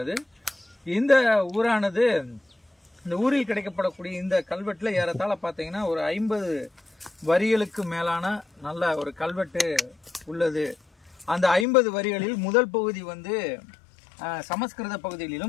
இந்த ஊரானது, இந்த ஊரில் கிடைக்கப்படக்கூடிய இந்த கல்வெட்டுல ஏறத்தாழ பார்த்தீங்கன்னா ஒரு 50 வரிகளுக்கு மேலான நல்ல ஒரு கல்வெட்டு உள்ளது. அந்த 50 வரிகளில் முதல் பகுதி சமஸ்கிருத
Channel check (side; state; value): right; drops out; at 11.7 s